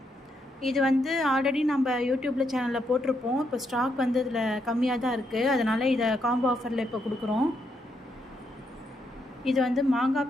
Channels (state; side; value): normal; both; correlation 0.78